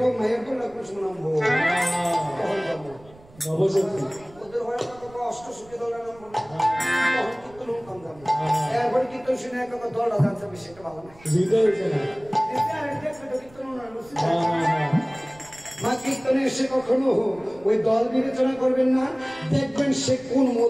মায়ের তো লাগবে শুনাবো নবশক্তি ওদের হয় অষ্টশক্তি দলের নাম বলবো কীর্তন কম দাম একবার কীর্তন শুনে এক দলটা জানতে বেশি একটা ভালো না মা কীর্তনে এসে কখনো ওই দল বিবেচনা করবেন না, দেখবেন সে কোন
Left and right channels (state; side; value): noise; right; rumble, 24 dB below the sound